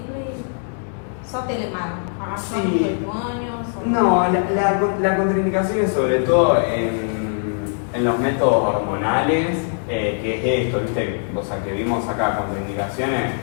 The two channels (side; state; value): right; silent; 58 dB below the other